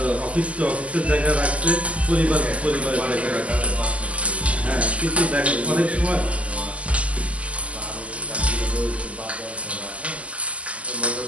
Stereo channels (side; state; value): left; late; 0.065 ms